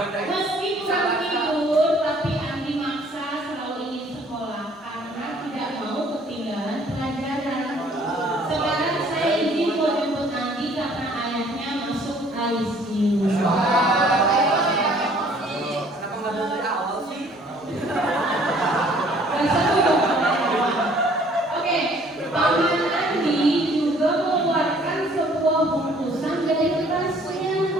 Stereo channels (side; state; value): both; normal; correlation 0.58